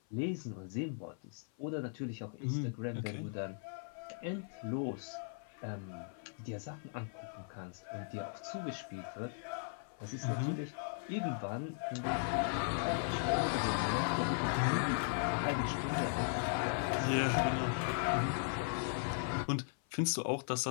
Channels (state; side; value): silent; right; 52 dB below the other